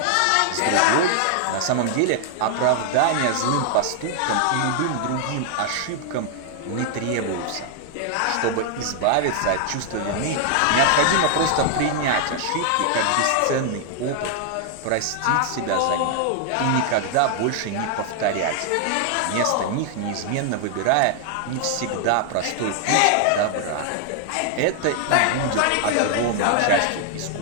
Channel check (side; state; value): both; different; correlation 0.00